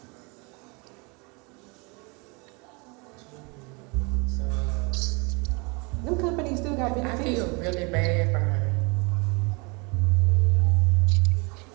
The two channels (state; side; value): quieter; left; 30.1 dB